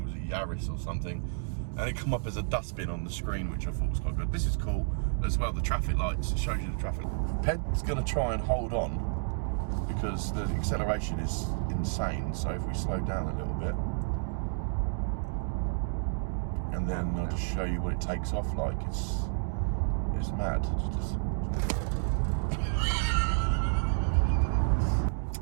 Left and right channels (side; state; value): left; silent; digital silence